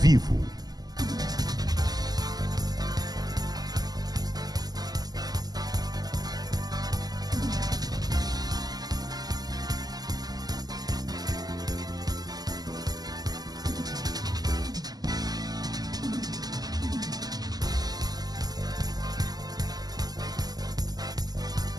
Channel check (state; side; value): late; left; 0.19 ms